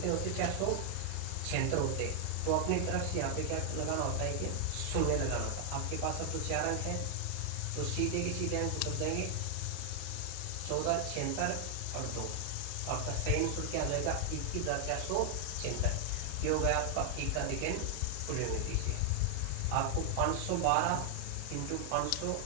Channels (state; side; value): different; both; correlation 0.00